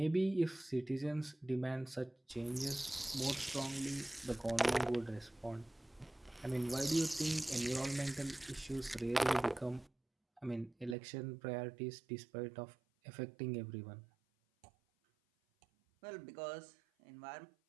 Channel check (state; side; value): drops out; left; at 11.0 s